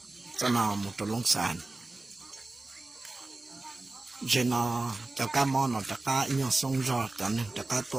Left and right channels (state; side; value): quieter; left; 3.1 dB